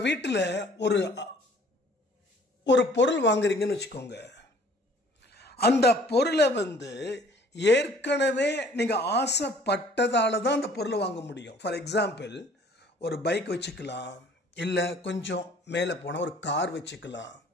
வீட்டில் ஒரு பொருள் வாங்குறீங்கன்னு வச்சுக்கோங்க. அந்த பொருளை ஏற்கனவே நீங்க ஆசைப்பட்டதால தான் அந்த பொருளை வாங்க முடியும். ஃபார் எக்ஸாம்பிள் ஒரு பைக் வச்சுக்கலாம், இல்லை கொஞ்சம் மேலே போனால் ஒரு கார் வச்சுக்கலாம்,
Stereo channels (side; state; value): both; normal; correlation 0.55